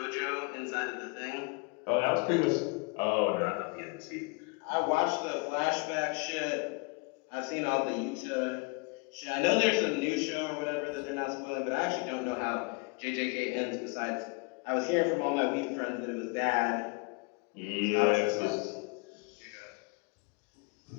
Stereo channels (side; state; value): right; quieter; 29.6 dB